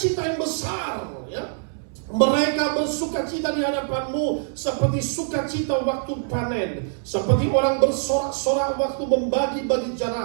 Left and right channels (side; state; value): left; silent; digital silence